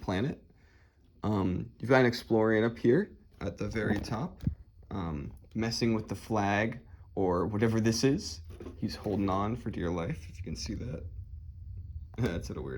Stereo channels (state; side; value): identical; both; correlation 1.00